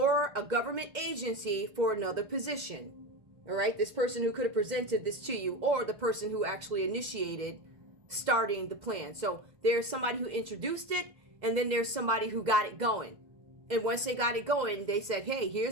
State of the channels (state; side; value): late; left; 2.0 ms